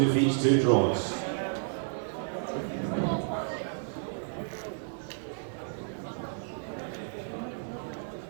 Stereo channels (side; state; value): left; silent; digital silence